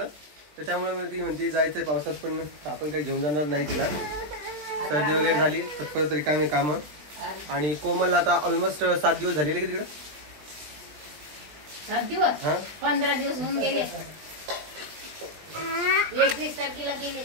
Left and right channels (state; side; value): late; left; 20 ms